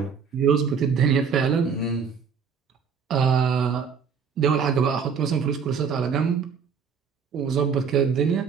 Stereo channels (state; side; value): quieter; left; 6.3 dB